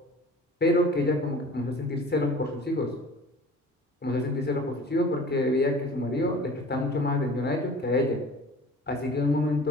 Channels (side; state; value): both; normal; correlation 0.44